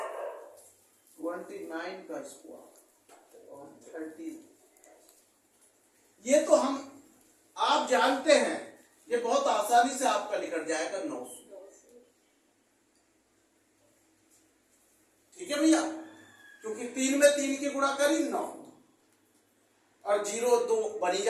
29 का स्क्वायर और 30। ये तो हम आप जानते हैं, ये बहुत आसानी से आपका निकल जाएगा 900। ठीक है भैया, क्योंकि 3 में 3 की गुणा करी 9 और 0 2 बनी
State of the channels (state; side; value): identical; both; correlation 1.00